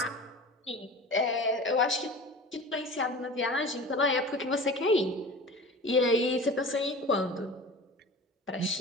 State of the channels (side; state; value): both; normal; correlation 0.36